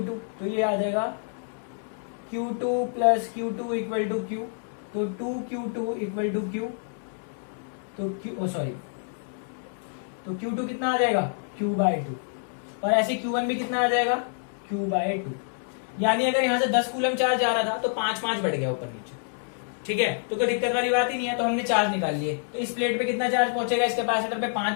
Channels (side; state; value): right; silent; digital silence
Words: तो ये आ जाएगा Q2 + Q2 = Q, तो 2Q2 = Q, तो Q2 कितना आ जाएगा, Q/2, और ऐसे Q1 भी कितना आ जाएगा, Q/2। यानी अगर यहाँ से 10 कूलम चार्ज आ रहा था तो 5 बढ़ गया ऊपर नीचे, ठीक है। तो कोई दिक्कत वाली बात ही नहीं है। तो हमने चार्ज निकाल लिए, तो इस प्लेट पे कितना चार्ज पहुंचेगा, इस कैपेसिटर पे